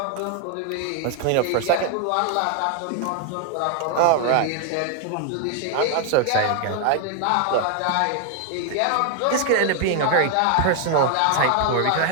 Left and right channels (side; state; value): both; different; correlation 0.00